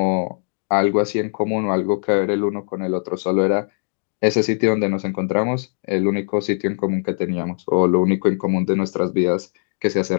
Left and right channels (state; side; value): silent; right; digital silence